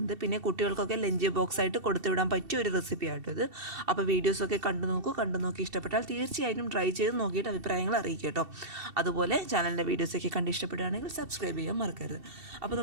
പിന്നെ കുട്ടികൾക്കൊക്കെ ലഞ്ച് ബോക്സ് ആയിട്ട് കൊടുത്തുവിടാൻ പറ്റിയ ഒരു റെസിപ്പി ആട്ടോ ഇത്. അപ്പോൾ വീഡിയോസൊക്കെ കണ്ടു നോക്കി ഇഷ്ടപ്പെട്ടാൽ തീർച്ചയായും ട്രൈ ചെയ്ത് നോക്കിയിട്ട് അഭിപ്രായങ്ങൾ അറിയിക്കുക കേട്ടോ. അതുപോലെ ചാനലിൻ്റെ വീഡിയോസൊക്കെ കണ്ട് ഇഷ്ടപ്പെടുകയാണെങ്കിൽ സബ്സ്ക്രൈബ് ചെയ്യാൻ മറക്കരുത്. അപ്പോൾ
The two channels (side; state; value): left; late; 2.7 ms